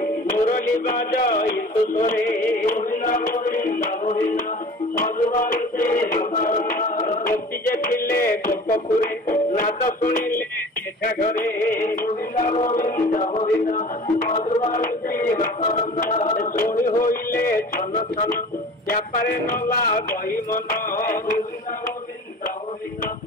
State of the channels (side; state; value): both; normal; correlation 0.42